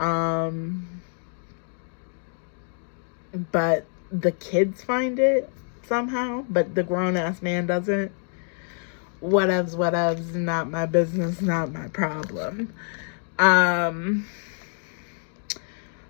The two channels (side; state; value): right; silent; 56 dB below the other